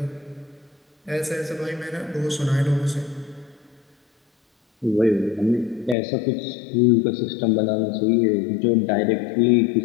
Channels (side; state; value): right; drops out; at 6.0 s